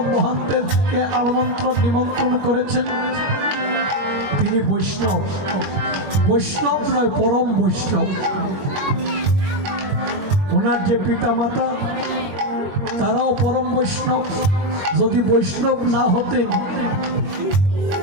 মহান্তেরকে আমন্ত্রণ নিমন্ত্রণ করেছেন, তিনি বৈষ্ণব। বৈষ্ণব নয়, পরম বৈষ্ণব। ওনার যে পিতা মাতা তারাও পরম বৈষ্ণব। যদি বৈষ্ণব না হতেন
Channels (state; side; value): late; left; 22 ms